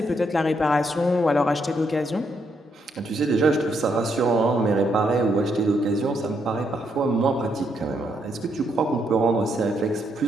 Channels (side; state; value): both; normal; correlation 0.76